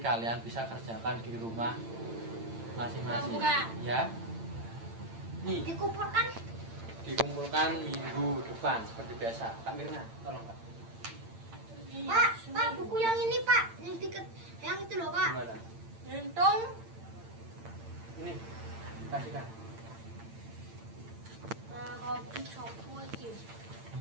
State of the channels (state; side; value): late; left; 8.8 ms